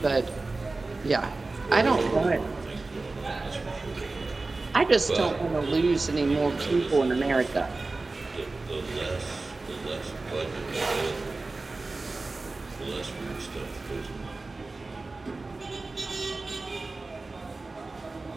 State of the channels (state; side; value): quieter; left; 3.4 dB